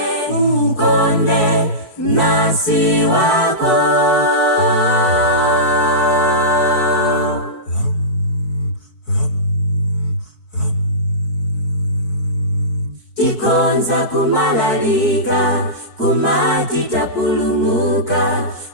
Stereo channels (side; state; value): right; late; 4.6 ms